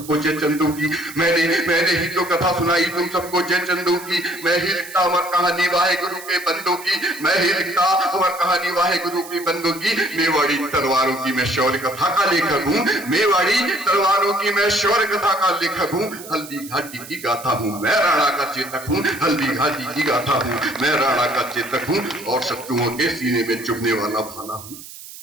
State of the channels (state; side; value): noise; right; hiss, 15 dB below the sound